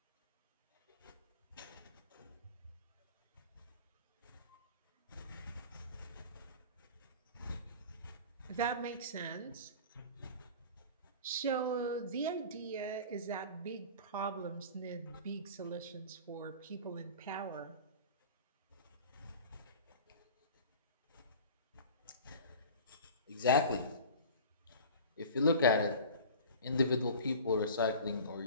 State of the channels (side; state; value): both; inverted; correlation -0.39